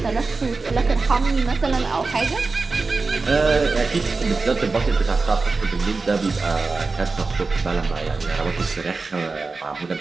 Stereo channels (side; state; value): left; quieter; 4.0 dB